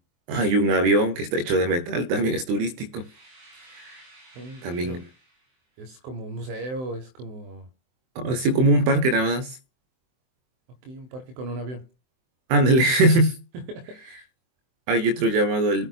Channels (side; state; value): left; late; 23 ms